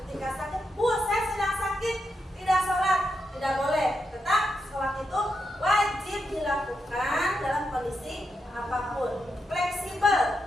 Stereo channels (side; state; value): both; normal; correlation 0.84